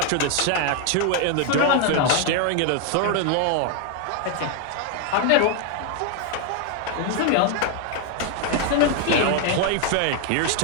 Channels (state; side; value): different; both; correlation 0.01